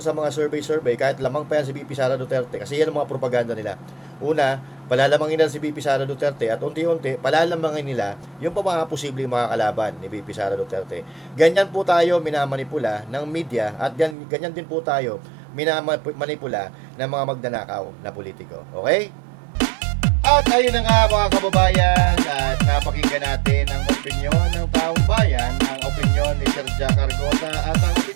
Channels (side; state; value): left; drops out; at 14.2 s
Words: mga survey kahit lamang pa yan si BP Sara Duterte kasi yan ang mga propaganda nila. Una, palalamangin nila si BP Sara Duterte at unti-unti palalamangin nila yung mga posibleng makakalaban ni BP Sara Duterte. Ganyan po tayo minamanipula ng media at ganyan din po tayo minamanipula ng mga magnanakaw na politiko. Okay? At ayun na nga mga kababayan, at napakinggan natin ang opinyon ng taong bayan, ang opinyon ni Sir Jack Argota at ang